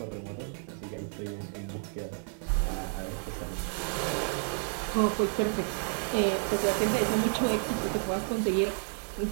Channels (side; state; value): left; silent; 57 dB below the other